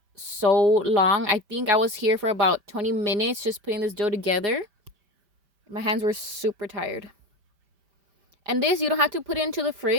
so long. I think I was here for about 20 minutes just putting this dough together. My hands were super tired. And this, you don't have to put it into the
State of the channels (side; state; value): left; late; 5.1 ms